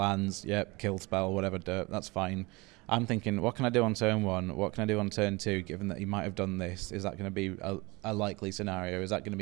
yep, kill spell, whatever, dirt, that's fine. I'm thinking, what can I do on turn 1? What can I do on turn 2? Given that he might have done this, is that going to be a likely scenario? Is that going to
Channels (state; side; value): quieter; left; 24.5 dB